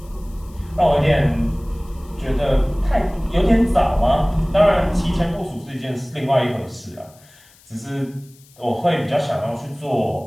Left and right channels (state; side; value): noise; left; hiss, 27 dB below the sound